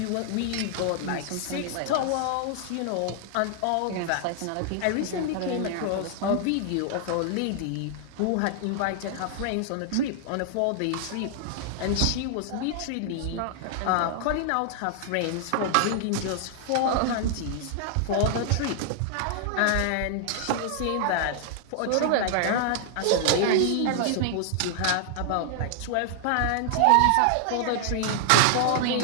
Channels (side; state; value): both; different; correlation -0.01